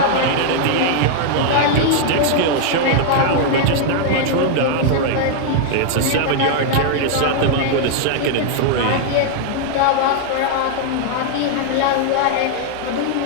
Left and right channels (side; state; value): both; different; correlation 0.00